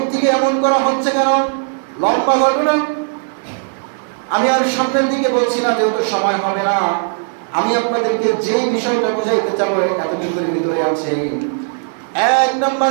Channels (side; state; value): left; silent; digital silence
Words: এমন করা হচ্ছে কেন? লম্বা ঘটনা, আমি আর সামনের দিকে বলছি না, যেহেতু সময় হবে না। আমি আপনাদেরকে যে বিষয়টা বুঝাইতে চাবো এতটুকুর ভিতরে আছে। এক